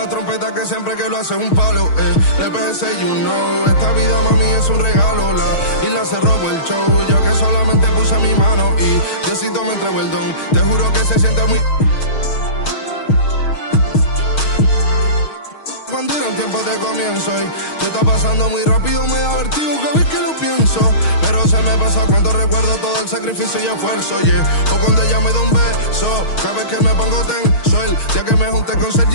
trompeta que siempre que lo hace es un palo. Le pensé, you know, esta vida mami es un regalo. La isla se robó el show, yo que solamente puse mi mano y Diosito me entregó el don. Te juro que se siente muy... Cuando eran tiempos de comienzo y tú estás pasando muy rápido, me da vertigo cada vez que lo pienso. Pero se me pasa cuando recuerdo todo el sacrificio y esfuerzo, yeah. O cuando ella me da un beso, cada vez que me pongo tenso. El día que me junté con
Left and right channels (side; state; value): right; late; 6.4 ms